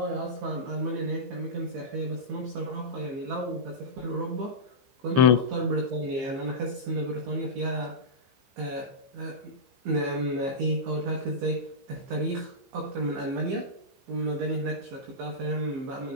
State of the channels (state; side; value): late; left; 15 ms